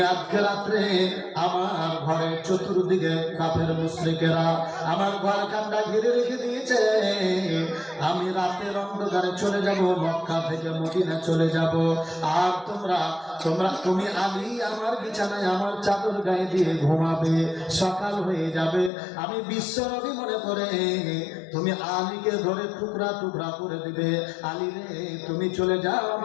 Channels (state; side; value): drops out; right; at 18.9 s